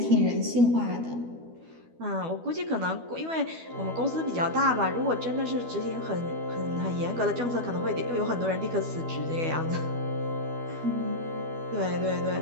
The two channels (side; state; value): left; late; 12 ms